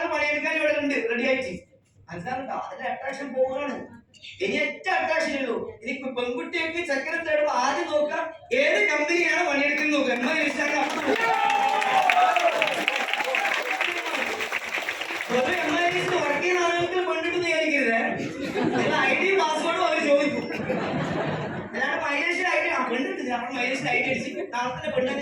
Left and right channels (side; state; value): both; identical; correlation 1.00